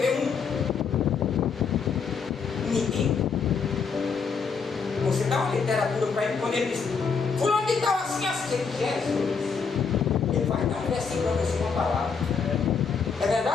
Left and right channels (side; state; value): right; quieter; 5.6 dB